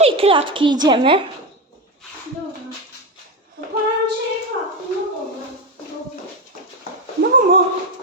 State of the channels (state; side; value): normal; both; correlation 0.13